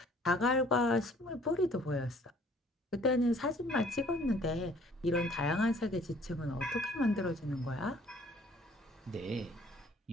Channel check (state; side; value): normal; both; correlation 0.57